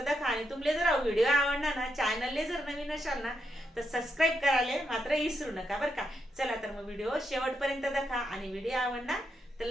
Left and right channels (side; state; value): both; normal; correlation 0.82